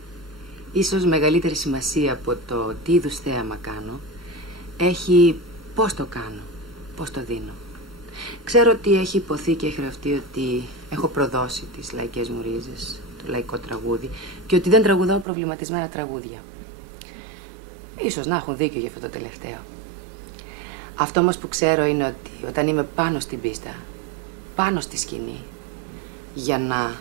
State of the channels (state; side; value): drops out; left; at 15.2 s